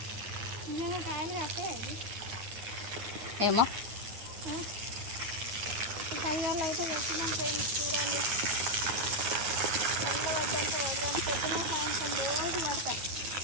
నిజంగా కాయలు కాస్తాయా ఇది? ఏమో 10 గల్ల అయితే పెట్టినాం ఫ్రెండ్స్. చూడండి చల్ల వద్దంటే వద్దాం పొద్దున సాయంత్రం రోజు పడతాయి.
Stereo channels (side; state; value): left; late; 9.3 ms